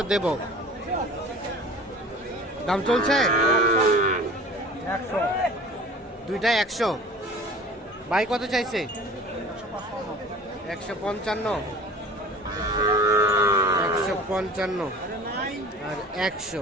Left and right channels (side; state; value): both; normal; correlation 0.43